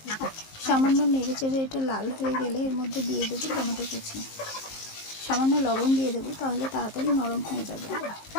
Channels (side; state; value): right; late; 19 ms